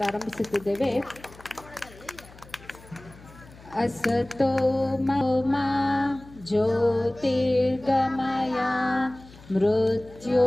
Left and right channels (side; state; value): left; noise; hum, 22 dB below the sound